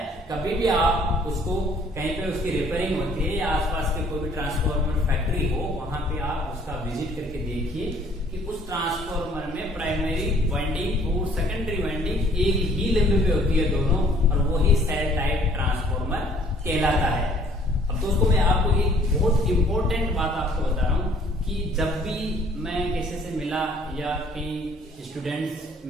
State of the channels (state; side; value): normal; both; correlation 0.58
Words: कभी भी आप उसको कहीं पे उसकी रिपेयरिंग होती है या आसपास के कोई भी ट्रांसफार्मर फैक्ट्री हो, वहां पे आप उसका विजिट करके देखिए कि उस ट्रांसफार्मर में प्राइमरी वाइंडिंग और सेकेंडरी वाइंडिंग एक ही लिंब पे होती है दोनों, और वही सेल टाइप ट्रांसफार्मर कहलाता है। अब दोस्तों मैं आपको एक बहुत इंपॉर्टेंट बात आपको बता रहा हूं कि जब भी मैं किसी से मिला या कई स्टूडेंट्स